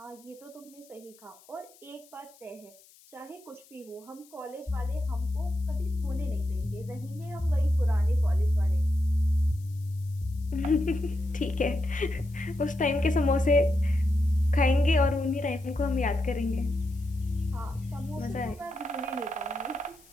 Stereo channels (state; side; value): noise; left; hiss, 26 dB below the sound